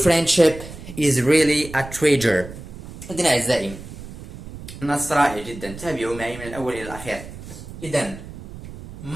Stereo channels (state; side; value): noise; right; rumble, 13 dB below the sound